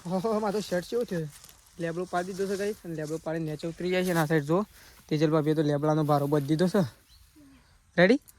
હો મારો શર્ટ કેવો થયો લેબડો પાડી દીધો છે ગાઈસ અને લેબડો પાડી નીચે ઉતરી જાય છે અને આ સાઈડ જો તેજલ ભાભીએ તો લેબડાનો ભારો બધી દીધો છે. રેડી?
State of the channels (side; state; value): both; identical; correlation 1.00